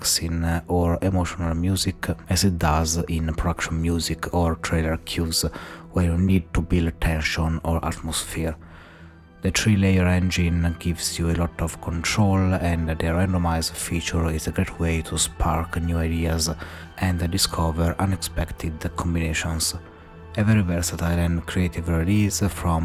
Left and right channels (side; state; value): both; identical; correlation 1.00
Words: or emotional music as it does in production music or trailer cues where you need to build tension or atmosphere. The 3-layer engine gives you a lot of control, and the randomize feature is a great way to spark new ideas and discover unexpected combinations. A very versatile and creative release